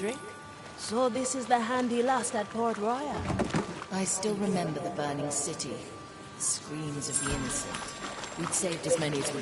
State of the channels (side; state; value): both; identical; correlation 1.00